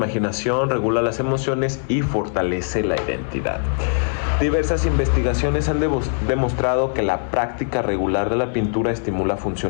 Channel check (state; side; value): silent; right; digital silence